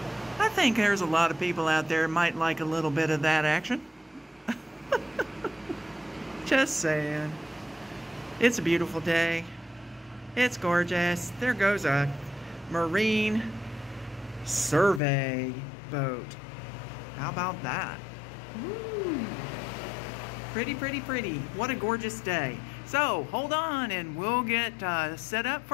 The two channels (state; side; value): drops out; right; at 15.0 s